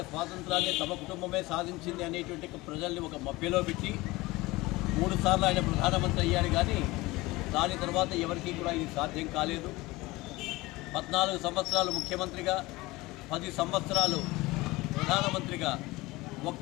స్వాతంత్రాన్ని తమ కుటుంబమే సాధించింది అనేటువంటి ప్రజల్ని ఒక మభ్యలో పెట్టి 3 సార్లు ఆయన ప్రధానమంత్రి అయ్యాడు. కానీ దాని తర్వాత ఎవరికీ కూడా ఇది సాధ్యం కాలేదు. 14 సంవత్సరాలు ముఖ్యమంత్రిగా 10 సంవత్సరాలు ప్రధానమంత్రిగా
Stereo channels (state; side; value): quieter; right; 20.9 dB